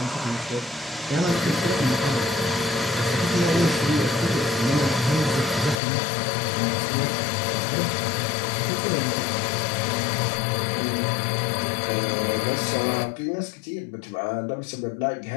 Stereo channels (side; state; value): right; drops out; at 5.8 s